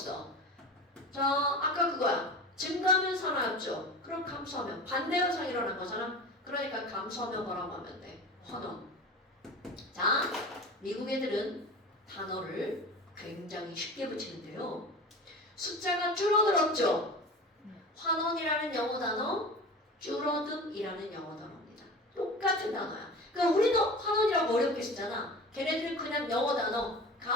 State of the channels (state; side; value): normal; both; correlation 0.34